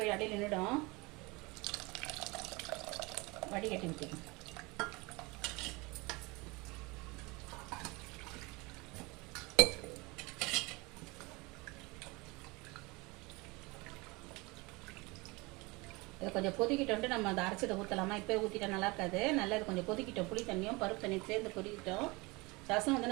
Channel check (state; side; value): quieter; left; 25.0 dB